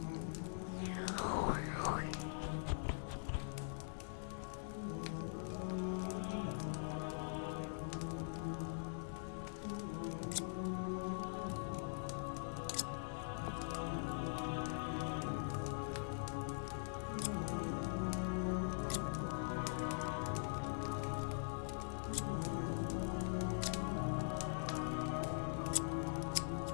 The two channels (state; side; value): silent; right; digital silence